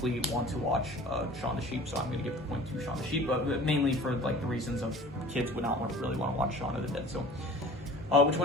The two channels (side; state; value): both; normal; correlation 0.44